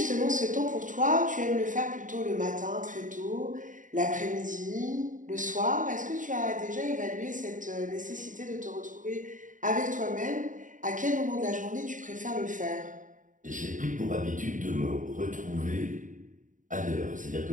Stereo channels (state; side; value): late; left; 0.38 ms